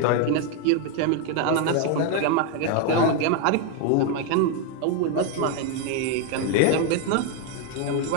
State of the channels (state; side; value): different; both; correlation 0.01